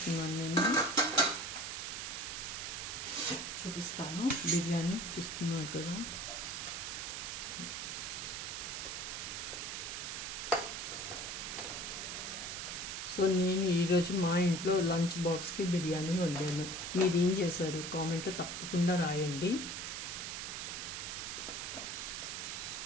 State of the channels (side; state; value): right; noise; hiss, 5 dB below the sound